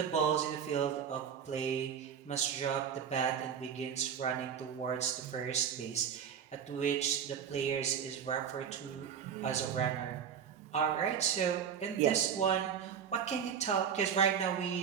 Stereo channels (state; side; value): quieter; left; 7.8 dB